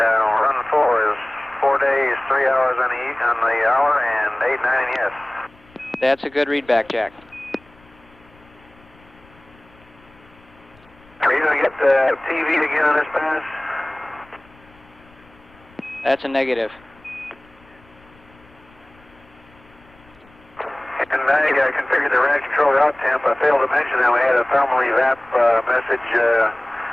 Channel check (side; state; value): left; noise; rumble, 28 dB below the sound